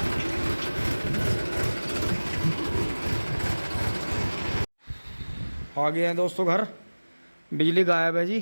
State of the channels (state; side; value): inverted; both; correlation -1.00